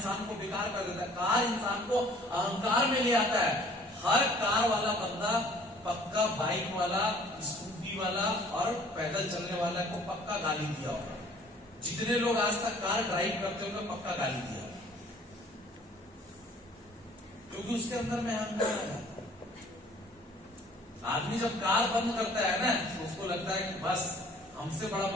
को बेकार कर देता है, कार इंसान को अहंकार में ले आता है। हर कार वाला बंदा पक्का बाइक वाला, स्कूटी वाला और पैदल चलने वाला को पक्का गाली दिया होगा। जितने लोग आज तक कार ड्राइव करते होंगे पक्का गाली दिया, क्योंकि उसके अंदर में अहंकार है। आदमी जब कार बंद करता है ना तो उसको लगता है कि बस हमसे बड़ा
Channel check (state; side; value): normal; both; correlation 0.54